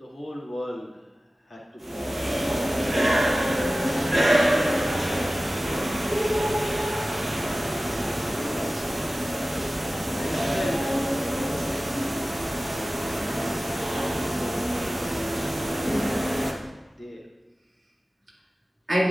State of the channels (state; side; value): normal; both; correlation 0.96